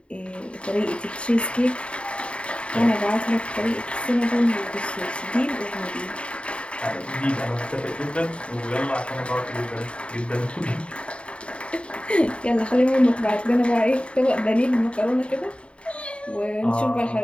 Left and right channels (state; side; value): late; right; 0.059 ms